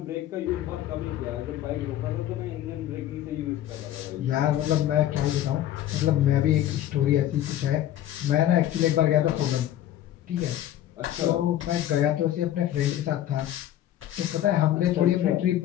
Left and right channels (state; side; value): quieter; right; 12.4 dB